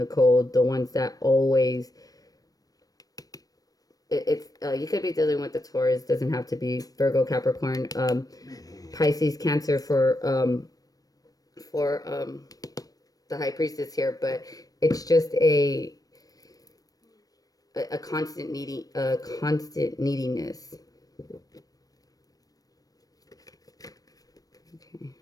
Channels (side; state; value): right; late; 0.18 ms